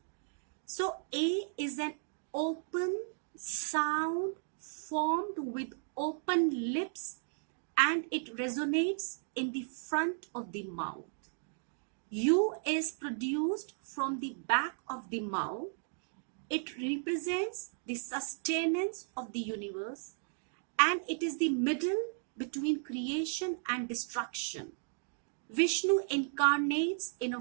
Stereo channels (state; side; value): silent; left; digital silence